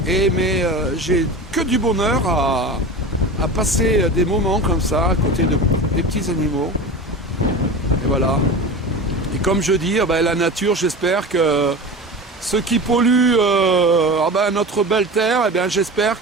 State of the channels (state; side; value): normal; both; correlation 0.31